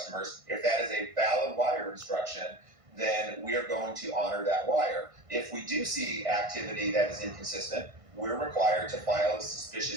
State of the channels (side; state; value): left; late; 1.5 ms